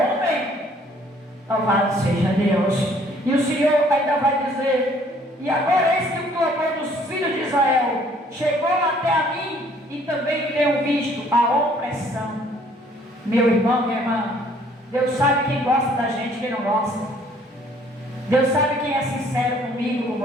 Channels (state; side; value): normal; both; correlation 0.60